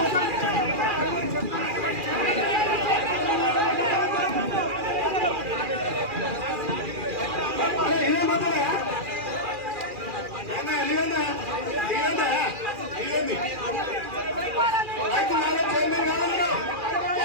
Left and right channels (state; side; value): late; left; 2.4 ms